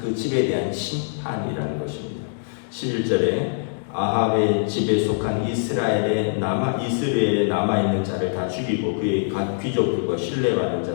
집에 대한 심판이라는 것입니다. 11절에 아합의 집에 속한 이스라엘에 남아있는 자를 다 죽이고 그의 각 귀족들과 신뢰받는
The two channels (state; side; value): silent; right; 63 dB below the other